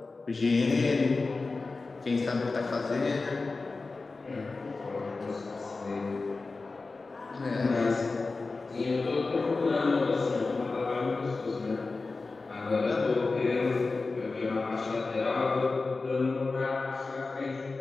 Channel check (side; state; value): right; quieter; 3.8 dB